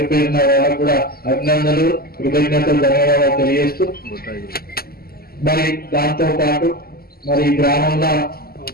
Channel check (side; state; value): right; late; 0.44 ms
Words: పేరున వాళ్ళకు కూడా అభినందనలు, కృతజ్ఞతలు, ధన్యవాదాలు తెలియజేస్తూ మరి దాంతో పాటు మరి గ్రామంలో